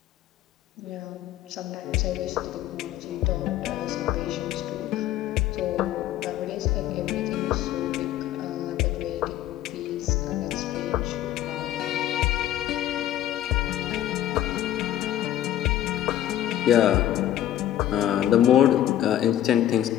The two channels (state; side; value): quieter; right; 12.3 dB